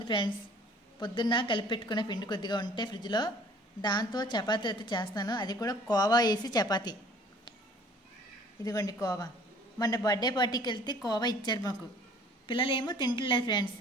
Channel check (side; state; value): both; normal; correlation 0.52